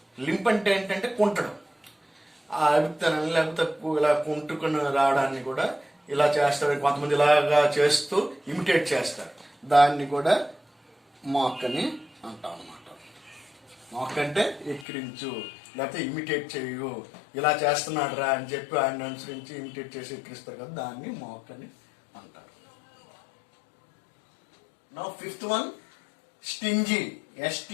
Lymph అంటే ఏంటంటే కుంటడం, ఆ అభిప్రాయం లేకపోతే ఇలా కుంటుకుని రావడాన్ని కూడా ఇలా చేస్తారు, కొంతమంది ఇలాగా చేస్తూ ఇమిటేట్ చేస్తారు, దాన్ని కూడా మాక్ అని అంటాం అన్నమాట. మాక్ అంటే ఎక్కిరించు, లేకపోతే ఇమిటేట్ చేయు, ఇలా చేస్తున్నాడు రా అని చెప్పి ఆయన అనుసరించి ఇమిటేట్ చేసి ఎక్కిరిస్తారు కదా, దాన్ని మాక్ అని అంటారు. Now fifth one, stingy.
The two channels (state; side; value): drops out; right; at 14.9 s